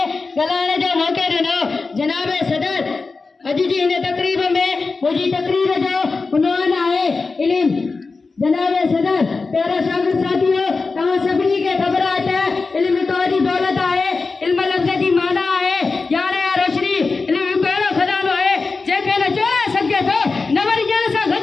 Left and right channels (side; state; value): right; quieter; 4.1 dB